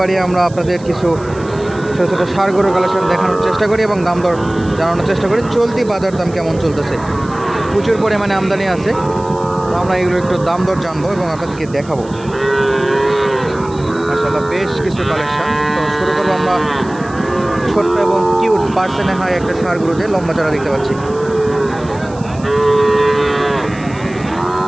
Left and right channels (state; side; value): noise; right; hiss, 23 dB below the sound